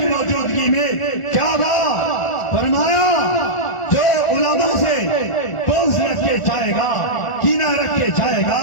موجودگی میں کیا بات فرمایا؟ جو علماء سے بغض رکھ کے جائے گا، کینہ رکھ کے جائے گا،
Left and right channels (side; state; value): right; late; 1.4 ms